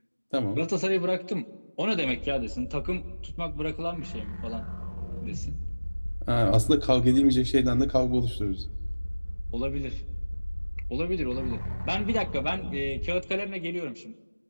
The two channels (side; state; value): both; inverted; correlation -1.00